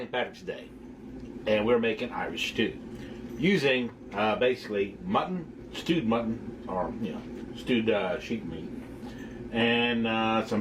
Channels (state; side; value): identical; both; correlation 1.00